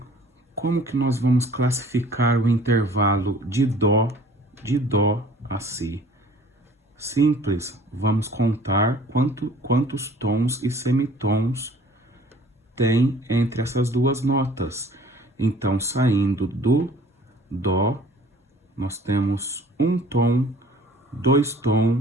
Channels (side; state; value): both; normal; correlation 0.51